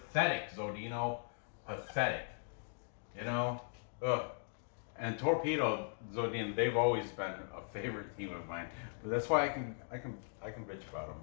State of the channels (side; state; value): right; silent; digital silence